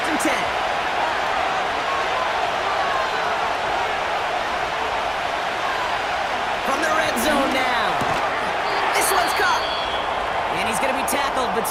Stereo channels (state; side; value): identical; both; correlation 1.00